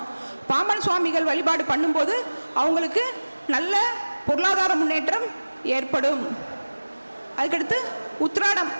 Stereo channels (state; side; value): inverted; both; correlation -1.00